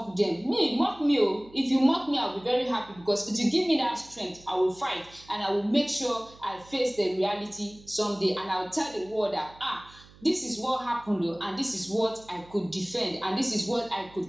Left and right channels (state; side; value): noise; right; hum, 24 dB below the sound